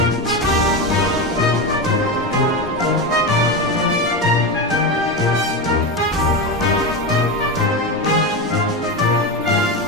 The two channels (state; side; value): normal; both; correlation 0.17